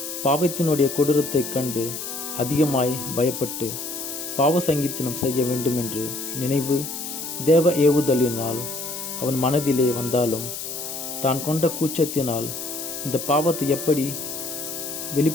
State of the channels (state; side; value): noise; left; hiss, 7 dB below the sound